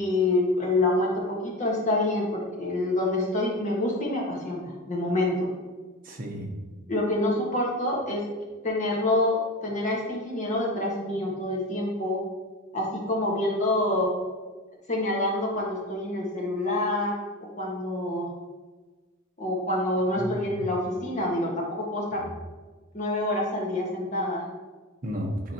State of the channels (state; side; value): normal; both; correlation 0.26